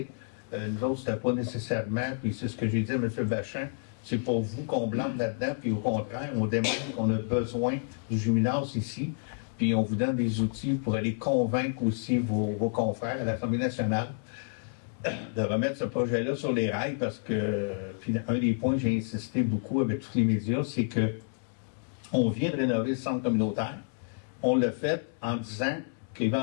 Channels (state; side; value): silent; right; digital silence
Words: Nous autres, c'était pas nécessairement, puis c'est ce que j'ai dit à M. Bachin, c'est pour vous qu'on blâme là-dedans, puis au contraire, on démontre qu'on a besoin du gymnase ici, puis on vous donne des outils pour aller convaincre aussi vos confrères à l'Assemblée nationale de remettre ce projet-là sur les rails parce que, puis un des points que j'ai insisté beaucoup avec tous les médias, c'est que on vient de rénover le centre communautaire. On l'a fait en disant